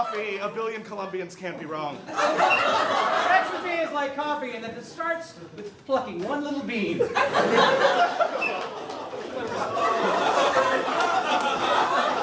A billion Colombians can't be wrong. Sex with me is like coffee and that it starts with plucking one little bean.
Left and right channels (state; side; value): identical; both; correlation 1.00